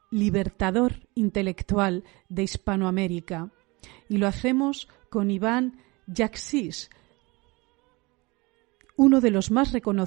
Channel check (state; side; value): quieter; left; 24.7 dB